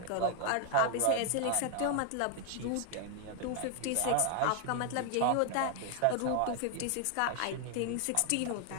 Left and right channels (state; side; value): different; both; correlation 0.00